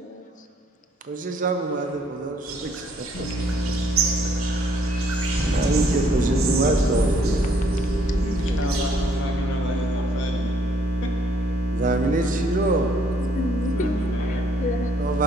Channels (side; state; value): both; normal; correlation 0.65